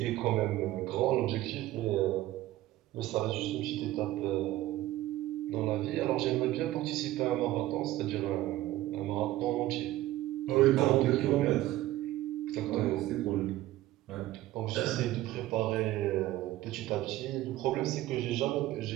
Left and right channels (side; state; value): left; quieter; 15.8 dB